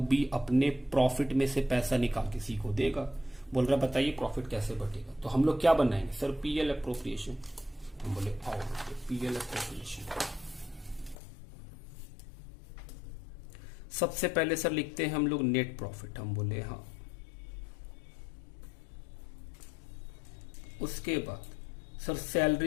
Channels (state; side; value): drops out; right; at 11.2 s